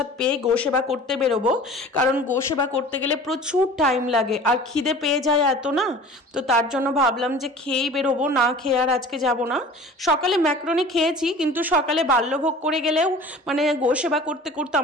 পেয়ে গোসেবা করতে বেরোবো, কারণ গোসেবা করতে গেলে প্রচুর টাইম লাগে আর খিদে পেয়ে যায় এত না, তো তার জন্য ভাবলাম যে খেয়েই বেরোবো, না খেয়ে আর আজকে যাব না। সকালে ম্যাক্রোনি খেয়েছি, কিন্তু সকালে বাল্যভোগ করে গেলেও মানে গোসেবা করতে করতে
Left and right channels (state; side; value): normal; both; correlation 0.42